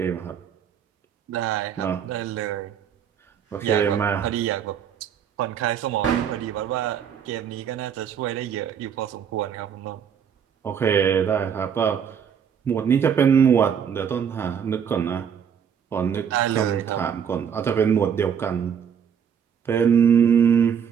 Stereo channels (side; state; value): left; quieter; 7.9 dB